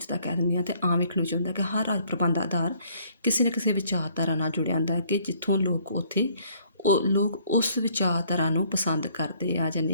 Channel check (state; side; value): inverted; both; correlation -0.62